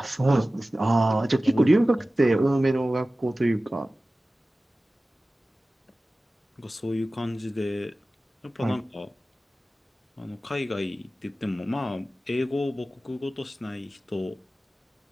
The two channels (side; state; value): both; normal; correlation 0.96